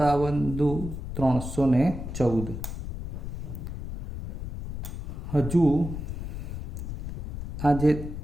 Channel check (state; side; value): noise; left; rumble, 7 dB below the sound